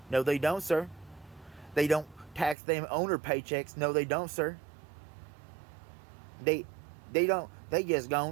No, they don't, sir. They don't tax them owner paychecks. No, they don't, sir. They just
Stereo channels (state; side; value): drops out; left; at 2.6 s